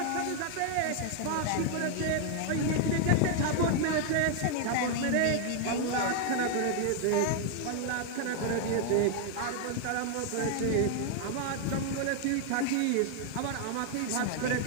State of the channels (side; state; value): both; different; correlation 0.00